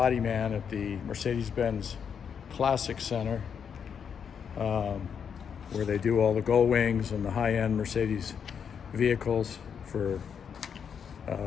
man at the Mercedes-Benz Classic Center, where they do all the gull wings and the high-end Mercedes vehicles for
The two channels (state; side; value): quieter; right; 7.2 dB